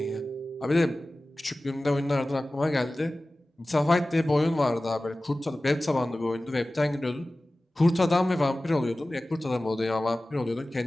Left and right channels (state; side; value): normal; both; correlation 0.97